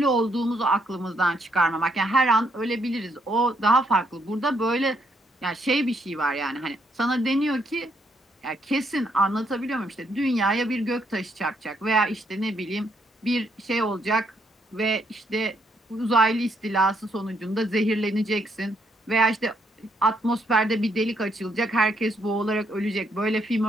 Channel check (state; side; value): normal; both; correlation 0.73